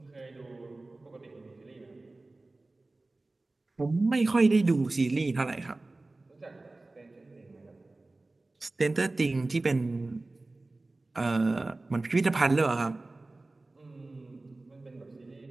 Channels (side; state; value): left; quieter; 3.1 dB